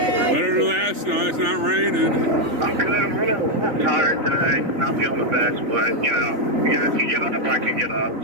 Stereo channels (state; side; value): late; left; 3.4 ms